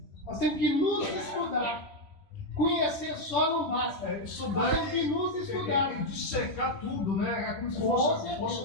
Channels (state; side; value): late; left; 3.1 ms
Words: Nós temos que nos estudar. Conhecer só não basta. Estudar nós temos que nos estudar. E dissecar tudo, né? É como se